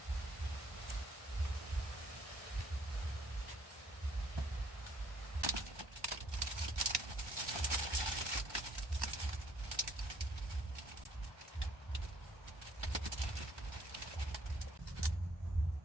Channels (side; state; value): left; late; 1.3 ms